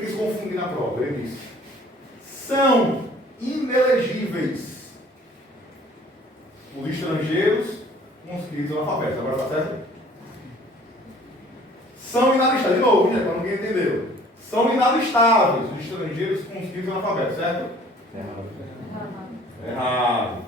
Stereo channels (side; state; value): both; normal; correlation 0.53